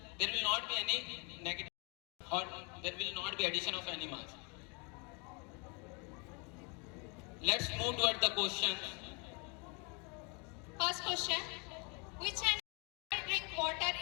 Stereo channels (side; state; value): right; quieter; 32.9 dB